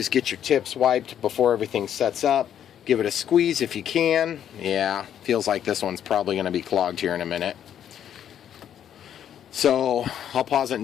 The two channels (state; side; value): quieter; right; 9.8 dB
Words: get your tips wiped before everything sets up. Give it a squeeze if you can. Yeah, feels like this one's probably going to be clogged here in a minute. So I'll pause it and